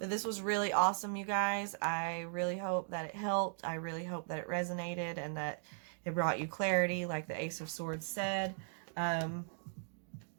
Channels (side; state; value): left; silent; digital silence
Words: this was really awesome, you guys. I really hope that it helped. I really hope that it resonated and that it brought you clarity, like the Ace of Swords said.